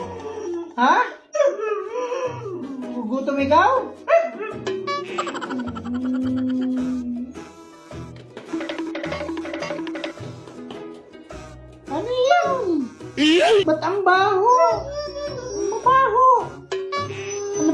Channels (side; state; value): both; identical; correlation 1.00